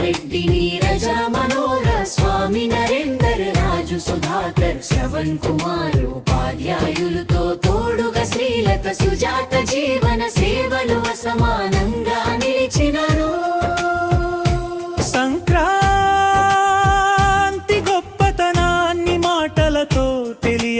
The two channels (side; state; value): both; identical; correlation 1.00